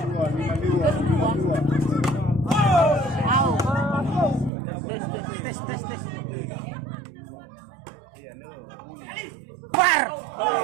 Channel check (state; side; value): drops out; left; at 4.5 s